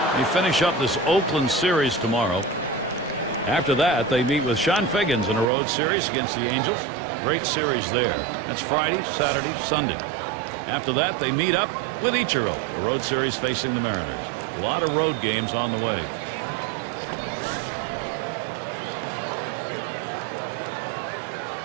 They finish up this Oakland series tomorrow. After that, they meet with Sean Figgins in a road series against the Angels. Great series there. That's Friday, Saturday, Sunday. After that, they meet up with Ichiro, a road series facing the Mariners. A lot of road games on the way.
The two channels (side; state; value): left; drops out; at 5.5 s